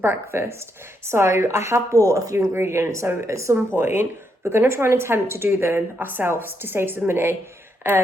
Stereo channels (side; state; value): both; normal; correlation 0.79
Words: breakfast. So I have bought a few ingredients. So at some point, we're going to try and attempt to do them ourselves to save some money.